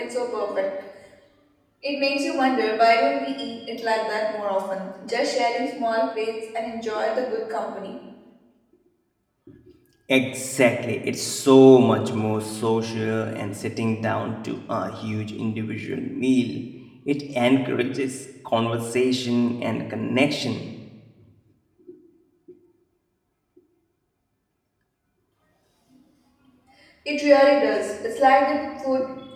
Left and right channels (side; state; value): both; identical; correlation 1.00